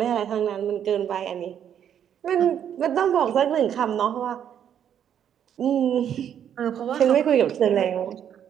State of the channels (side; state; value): left; quieter; 9.3 dB